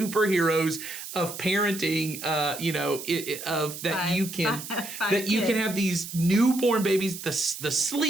of parenting. Of that you can you can have these newborn babies, the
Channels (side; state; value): right; noise; hiss, 10 dB below the sound